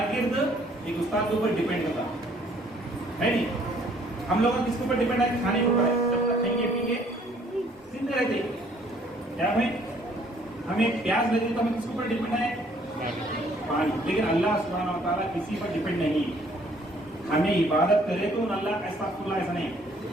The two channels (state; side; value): normal; both; correlation 0.61